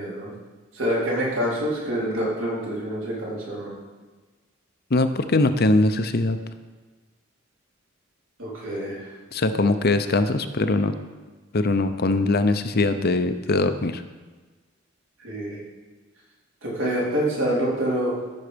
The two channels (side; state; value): both; normal; correlation 0.48